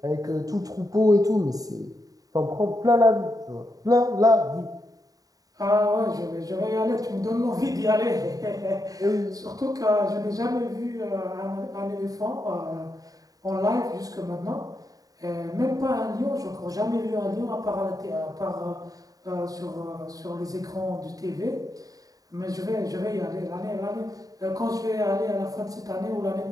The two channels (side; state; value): left; late; 0.18 ms